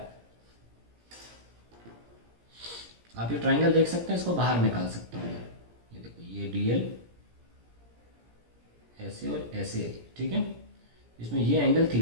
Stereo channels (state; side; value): late; left; 17 ms